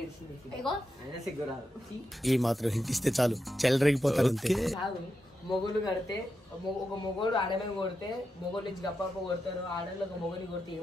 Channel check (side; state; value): both; normal; correlation 0.87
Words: ఏడ్చింది అయినా సిగ్గురాదు ఈ మాత్రం హింట్ ఇస్తే చాలు చెలరేగిపోతారు అంతే కాదు మొగులు కడితే ఒక మొగోడు ఆడమే కొడితే మొగోడు నుంచి గప్ప కొడతారు ఆడలు ఒక మొగని కొడితే